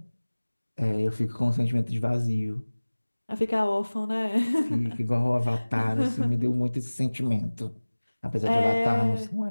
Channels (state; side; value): inverted; both; correlation -1.00